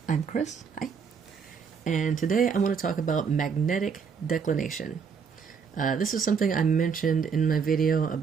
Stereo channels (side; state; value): left; quieter; 6.2 dB